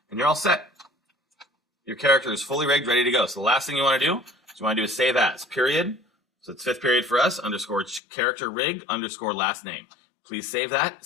And you're all set. Your character is fully rigged, ready to go. So the last thing you want to do is save as, period. So it's fifth period for us, underscore character rig, underscore last name. Please save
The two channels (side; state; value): right; drops out; at 8.0 s